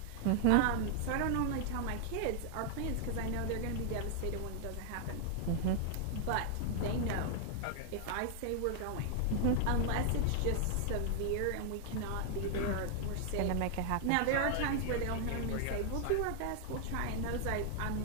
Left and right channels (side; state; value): both; different; correlation 0.00